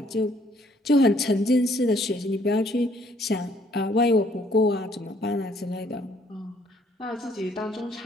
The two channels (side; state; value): both; normal; correlation 0.64